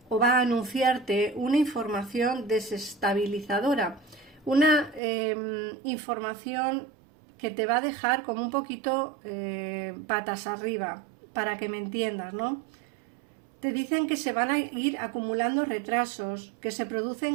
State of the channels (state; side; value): drops out; left; at 5.0 s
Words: o va a anunciarte una información desestabilizadora, una información que te va a dejar como un poquito patas arriba, para que me entiendas, ¿no? Te dicen que se van a ir acumulando retrasos, que se